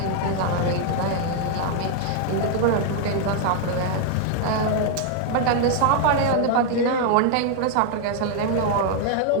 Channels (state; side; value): different; both; correlation 0.00